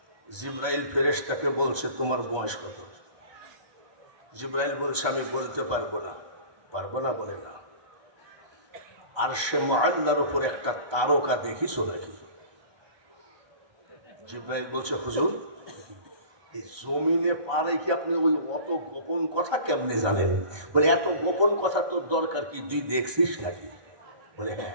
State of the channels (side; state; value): left; late; 1.2 ms